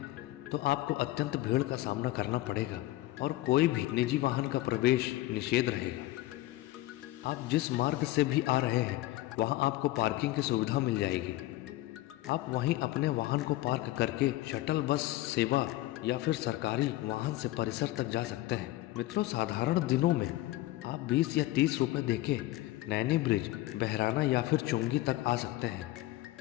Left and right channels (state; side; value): quieter; right; 17.0 dB